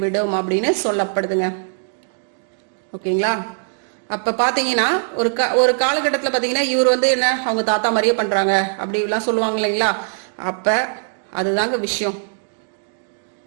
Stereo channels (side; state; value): left; silent; digital silence